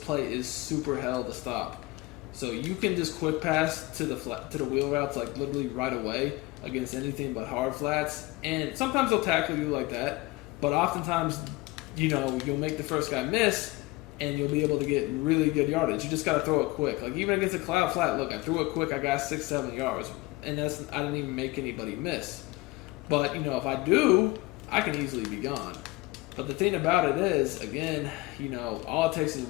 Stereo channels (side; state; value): right; quieter; 21.5 dB